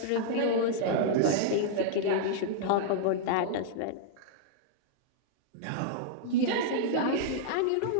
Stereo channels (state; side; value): different; both; correlation -0.01